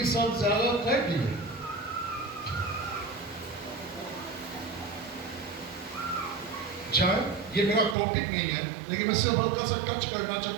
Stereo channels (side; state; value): left; drops out; at 8.0 s